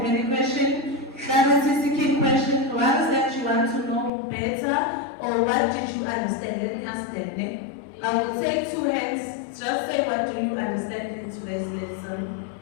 any question? Clarity-seeking question, what is that you want to know better, or what did you understand? Let me ask them. I will take two hands. Just say what do you understand in today's lesson.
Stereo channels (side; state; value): right; drops out; at 4.1 s